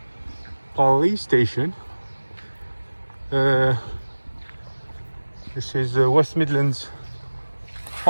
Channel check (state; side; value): inverted; both; correlation -1.00